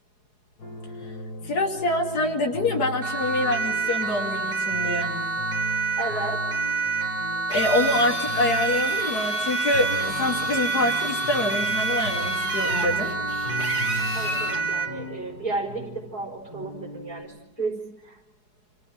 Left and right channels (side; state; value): right; late; 4.7 ms